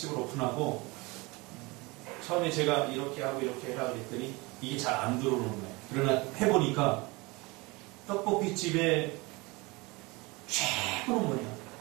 오픈하고 처음에 제가 이렇게 하고 이렇게 해라 그랬더니 이게 잘 안 들어오는 거예요. 그러나 해보니까 떡볶이집의 최고는 뭐냐?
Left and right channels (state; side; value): quieter; left; 24.9 dB